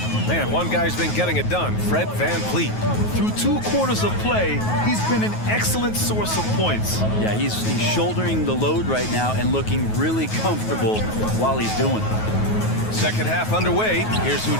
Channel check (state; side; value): late; right; 9.3 ms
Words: Man, one guy's been getting it done, Fred Van Vliet. Through 2 quarters of play, he's been an excellent source of points. Yeah, he's shouldering the load right now and looking really comfortable while he's doing it. Second half underway. Here's who